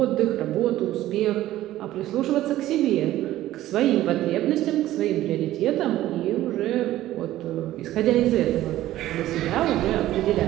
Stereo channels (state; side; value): quieter; left; 14.5 dB